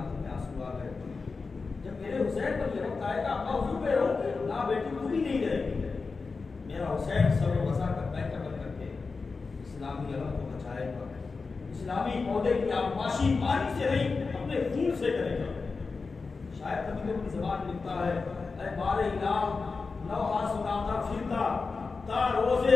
میں آنسو آ گئے، جب میرے حسین پر یہ وقت آئے گا ابا حضور پہ رہوں گی، نہ بیٹی تو بھی نہیں رہے گی، میرا حسین سر و وضع کا پیکر بن کر کے اسلامی علم کو بچائے گا، اسلامی پودے کی آبپاشی پانی سے نہیں اپنے خون سے کرے گا۔ شاید کبھی اپنی زبان میں لکھتا ہے، اے بار الہ نوحہ سناتا پھرتا، تا روزے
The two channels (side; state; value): right; quieter; 4.4 dB